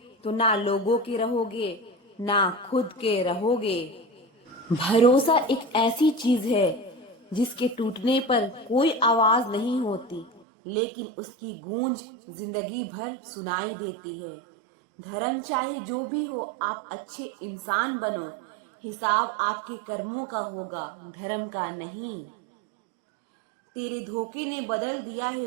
तो ना लोगों के रहोगे, ना खुद के रहोगे। भरोसा एक ऐसी चीज है जिसके टूटने पर कोई आवाज नहीं होती, लेकिन उसकी गूंज जिंदगी भर सुनाई देती है। धर्म चाहे जो भी हो, आप अच्छे इंसान बनो। हिसाब आपके कर्मों का होगा, धर्म का नहीं। तेरे धोखे ने बदल दिया है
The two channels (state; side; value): drops out; left; at 10.5 s